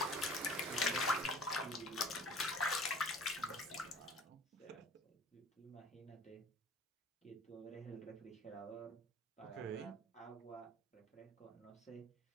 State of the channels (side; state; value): both; normal; correlation 0.46